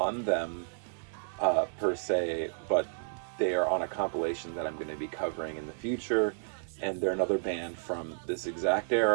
them per se, but they are on a compilation that I'm going to be covering in the future, and they're another band from this exact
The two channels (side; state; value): left; silent; 57 dB below the other